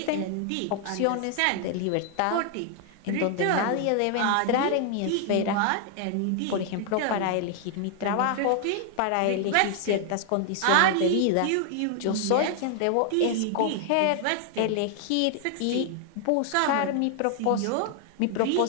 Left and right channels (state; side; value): different; both; correlation 0.00